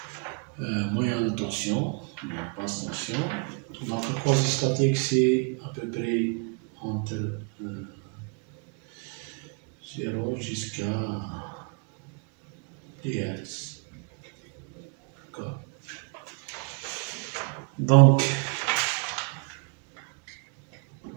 moyenne tension, basse tension. Donc le quasi statique, c'est à peu près entre 0 jusqu'à 10 Hz. D'accord. Donc,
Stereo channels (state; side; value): quieter; left; 36.1 dB